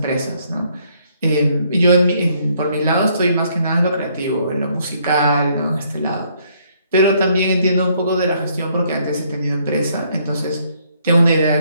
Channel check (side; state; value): both; inverted; correlation -0.68